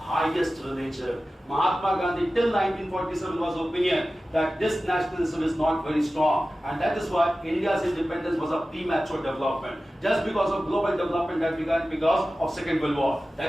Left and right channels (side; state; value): both; normal; correlation 0.95